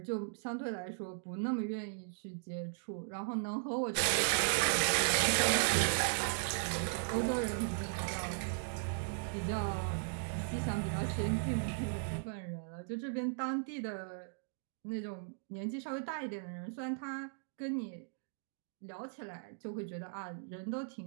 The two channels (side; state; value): left; silent; digital silence